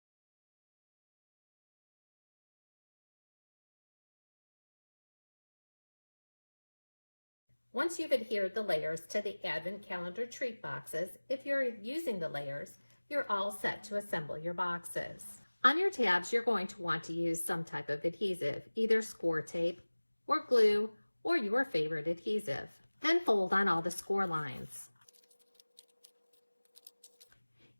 Once you've adhered the layers to the Advent Calendar treat boxes, if you're using the layers, you're all set to assemble your boxes. On your tabs, you're going to want to use some type of adhesive, either score tape or glue or your favorite adhesive. Then fold on all the score lines.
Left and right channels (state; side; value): inverted; both; correlation -1.00